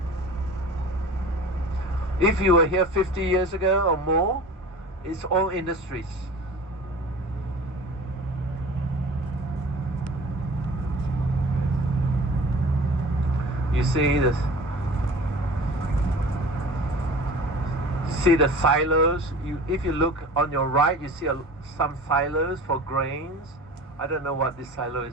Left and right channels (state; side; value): normal; both; correlation 0.40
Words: If you were here 50 years ago or more, it's all industries. You see this? See the silos? If you look on your right, you see some silos for grains. I don't know what this silo